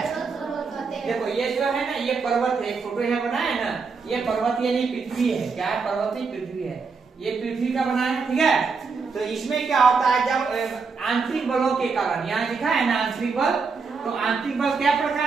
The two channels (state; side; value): quieter; left; 4.9 dB